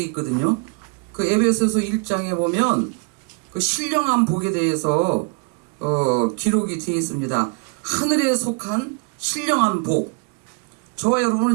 있거든요. 그 에베소서 1장에 보면 그 신령한 복에 대해서 기록이 되어 있습니다. 하늘에 속한 신령한 복. 저와 여러분은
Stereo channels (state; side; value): quieter; left; 32.9 dB